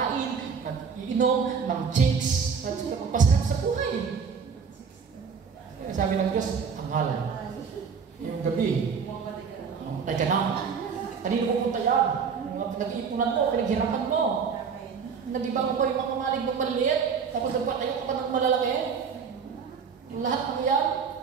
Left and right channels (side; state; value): left; quieter; 6.1 dB